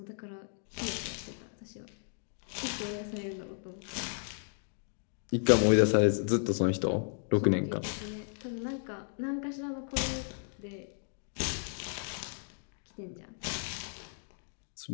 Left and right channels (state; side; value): silent; right; digital silence